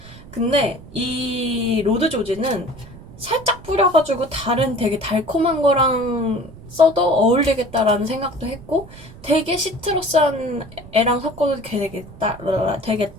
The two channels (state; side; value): noise; right; rumble, 18 dB below the sound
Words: 근데 이 로드 조지는 살짝 뿌려가지고 다른 되게 달콤한 거랑 써도 어울리겠다라는 생각도 했고 되게 시트러스한 애랑 섞어도